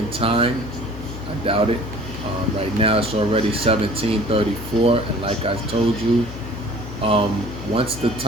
time. I doubt it. Right now it's already 17:34, and like I told you, once the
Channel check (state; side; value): noise; left; hum, 11 dB below the sound